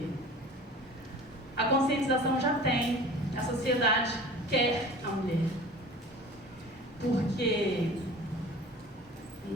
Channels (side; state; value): both; normal; correlation 0.41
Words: A conscientização já tem, a sociedade quer a mulher. Porque